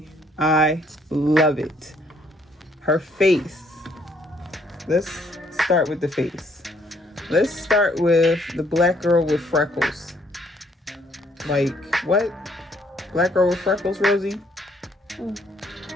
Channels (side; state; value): both; normal; correlation 0.66